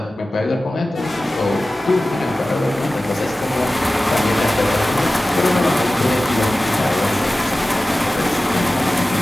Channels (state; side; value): normal; both; correlation 0.96